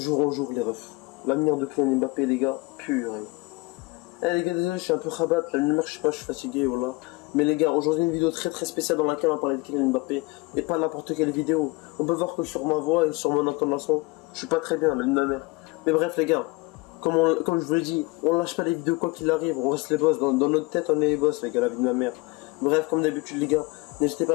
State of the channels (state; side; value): quieter; right; 23.9 dB